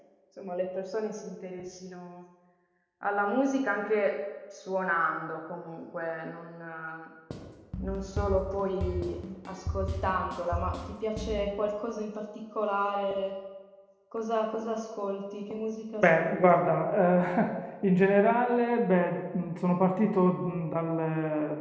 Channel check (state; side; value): identical; both; correlation 1.00